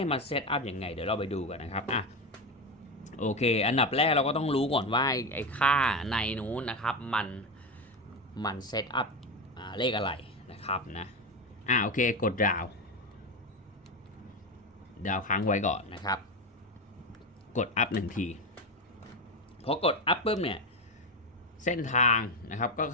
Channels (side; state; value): both; normal; correlation 0.16